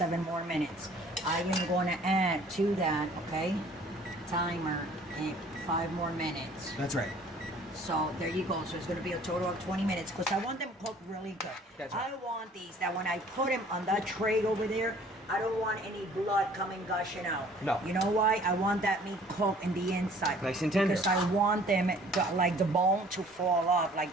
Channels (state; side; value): normal; both; correlation 0.53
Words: more minutes. I am going to add to that, okay, timer, and 5 more minutes. That's right. So there you go. So it's going to be a total of 20 minutes because I want them cooked really good. That's right. I want these that when I put them on that tray over there, I don't want any blood coming gushing out. No. You know why? I want that meat cooked in the inside. Nice and tender. Because I want them, like the bone, to fall off,